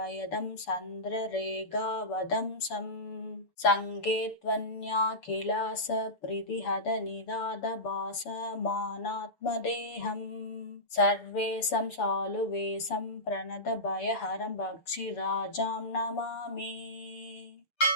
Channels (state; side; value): late; right; 6.9 ms